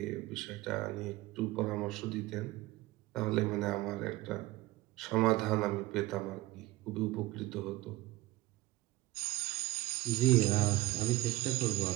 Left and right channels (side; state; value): left; quieter; 17.7 dB